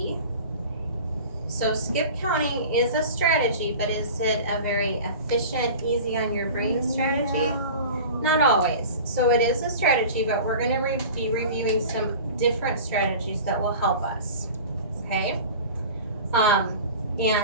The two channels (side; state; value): both; inverted; correlation -0.37